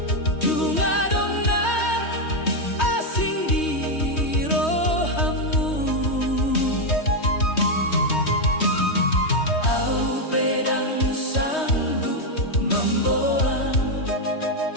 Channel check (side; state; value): right; late; 3.2 ms